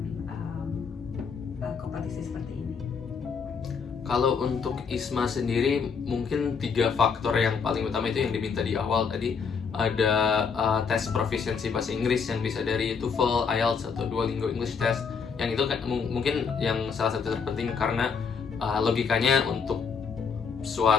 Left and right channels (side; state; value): right; quieter; 5.8 dB